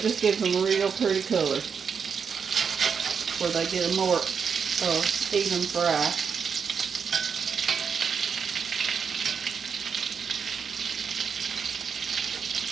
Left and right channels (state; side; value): quieter; left; 6.4 dB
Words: gives them a real pretty color, where they get a more even fry.